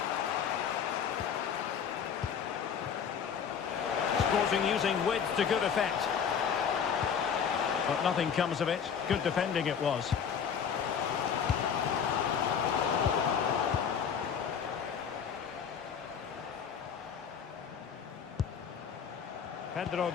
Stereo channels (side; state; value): right; quieter; 7.3 dB